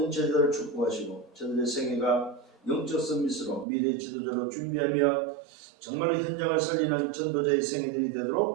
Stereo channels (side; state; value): left; drops out; at 3.7 s